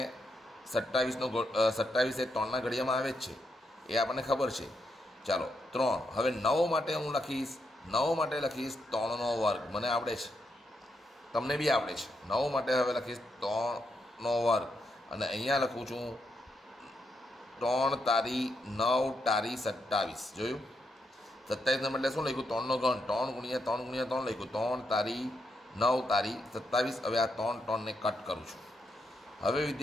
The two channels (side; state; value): both; normal; correlation 0.81